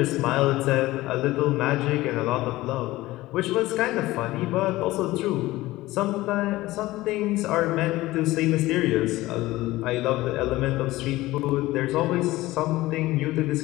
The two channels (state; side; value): quieter; right; 18.0 dB